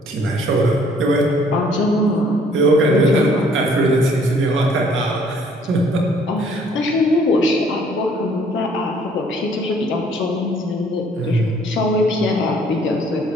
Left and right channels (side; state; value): both; normal; correlation 0.60